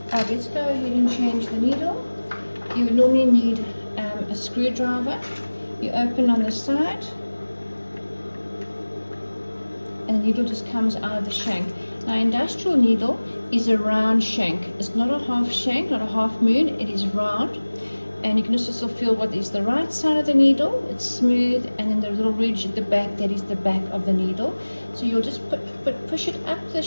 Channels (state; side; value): inverted; both; correlation -1.00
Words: Let's go ahead and change the needle. You would normally need a screwdriver. You open on the side, and the needle just comes out of the shank. Now, industrial needle is a round shank. It's not a half shank, not a half moon. It is round, and you can also feel what is the right side of the needle. It's smooth, and then the little ridge at the back, that is the back of the needle. So you'll just push it up the